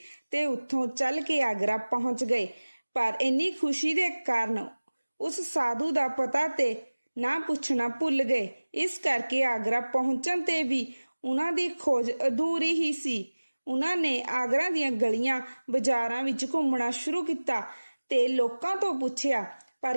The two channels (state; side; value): inverted; both; correlation -1.00